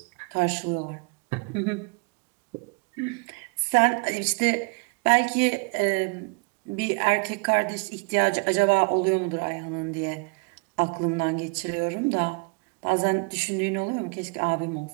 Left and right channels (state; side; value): quieter; left; 32.1 dB